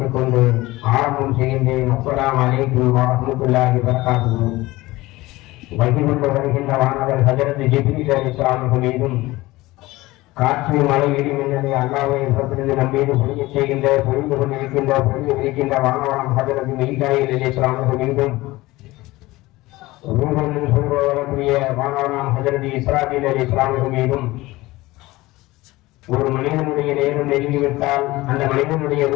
கொண்டு ஆரம்பம் செய்கின்றேன். அஸ்ஸலாமு அலைக்கும் வரஹ்மத்துல்லாஹி வபரகாத்துஹு. வகிர்ந்து வருகின்ற வானவர் ஹஜரத் ஜிப்ரீல் அலைஹிஸ்ஸலாம் மீதும் காற்று மழை இடி மின்னலை அல்லாஹ்வை புறத்திலிருந்து நம் மீது பொழியச் செய்கின்ற பொழிந்து கொண்டிருக்கின்ற வானவரம் ஹஜரத் மீகாயில் அலைஹிஸ்ஸலாம் மீதும் ரூஹன் சொல்வதற்குரிய வானவரம் ஹஜரத் இஸ்ராஃபீல் அலைஹிஸ்ஸலாம் மீதும் ஒரு மனிதனுடைய நேரம் நெருங்கிவிட்டால் அந்த மனிதனுடைய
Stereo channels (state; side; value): quieter; right; 19.4 dB